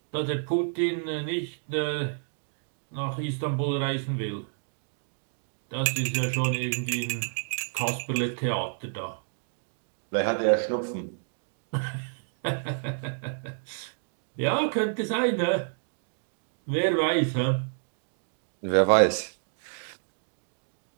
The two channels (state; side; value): silent; left; digital silence